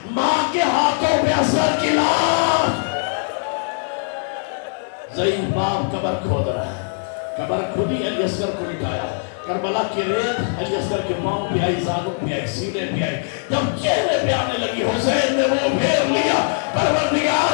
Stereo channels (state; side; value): silent; right; digital silence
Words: ماں کے ہاتھوں پہ اصغر کی لاش. ضعیف باپ قبر کھود رہا ہے، قبر کھودی علی اصغر کو لٹایا. کربلا کی ریت علی اصغر کے پاؤں پہ آئی، زانوں پہ آئی، سینے پہ آئی. جب چہرے پہ آنے لگی حسین نے وہ پھیر لیا.